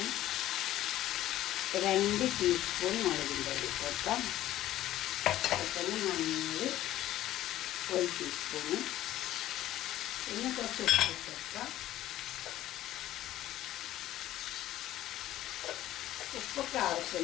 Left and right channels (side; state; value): right; quieter; 13.9 dB